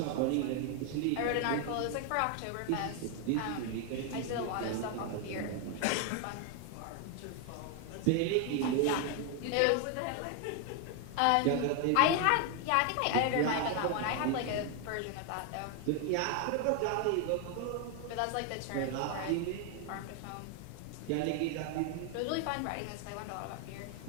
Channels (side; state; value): both; different; correlation 0.01